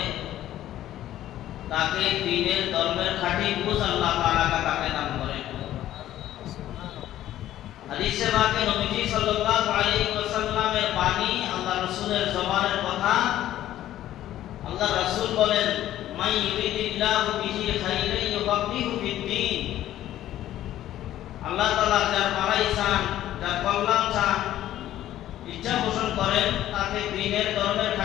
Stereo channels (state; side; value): quieter; right; 13.0 dB